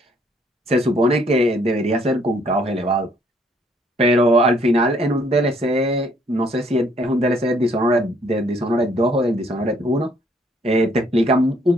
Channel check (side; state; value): both; normal; correlation 0.65